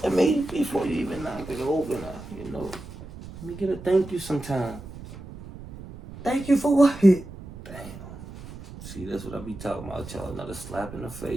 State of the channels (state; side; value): noise; right; rumble, 14 dB below the sound